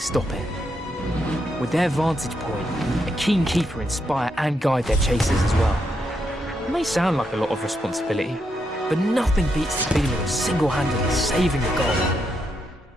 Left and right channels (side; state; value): both; normal; correlation 0.81